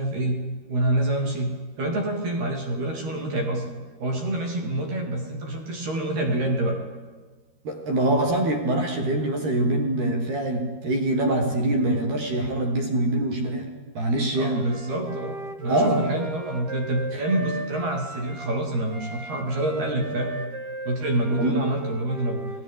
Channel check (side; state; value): left; late; 13 ms